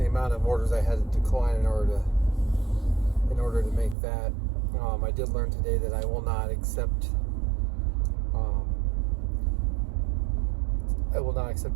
amount of orders I had to decline in order to make that. I did learn today that I will not accept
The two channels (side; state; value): left; drops out; at 4.0 s